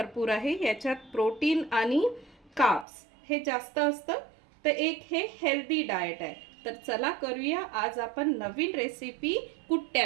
आहे। याच्यात प्रोटीन आणि कार्ब्स हे जास्त असतं, तर एक हे हेल्दी डाएट आहे। तर चला करूया आज आपण नवीन रेसिपी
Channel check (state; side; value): drops out; left; at 2.9 s